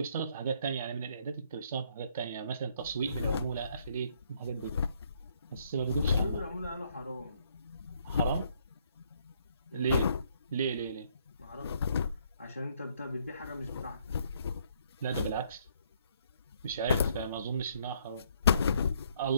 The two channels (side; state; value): both; inverted; correlation -0.68